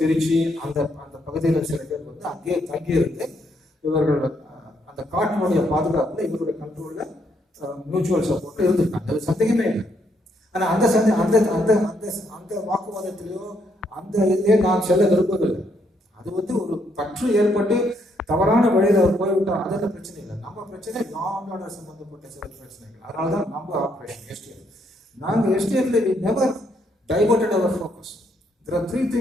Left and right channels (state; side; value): normal; both; correlation 0.74